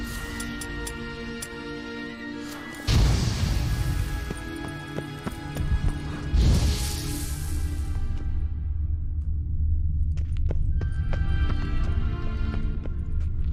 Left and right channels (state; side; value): identical; both; correlation 1.00